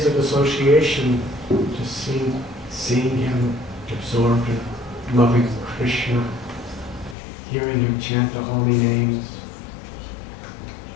of association, just seeing him absorbed in loving Krishna, hearing him chant the holy names,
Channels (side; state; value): right; drops out; at 7.2 s